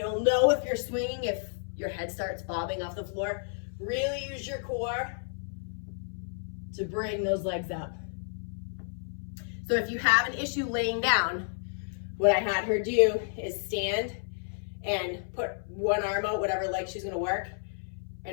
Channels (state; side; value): silent; right; 57 dB below the other